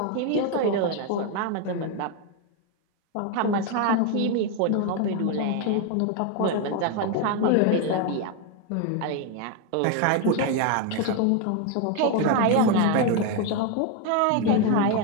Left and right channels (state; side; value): different; both; correlation 0.01